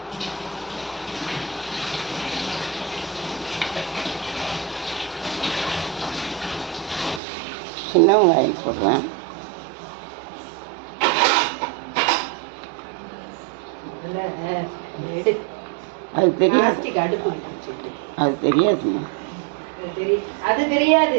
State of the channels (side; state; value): left; drops out; at 7.2 s